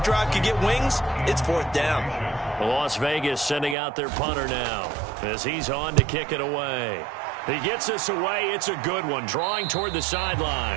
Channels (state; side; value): drops out; left; at 3.8 s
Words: could get wings, it's 4th down. Las Vegas sending out their punter now as he's on to kick it away. He gets this away. It's a good one, drawing toward the